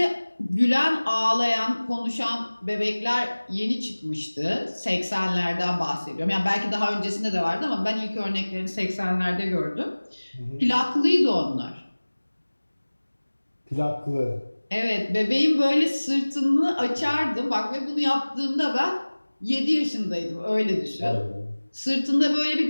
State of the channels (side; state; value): both; inverted; correlation -1.00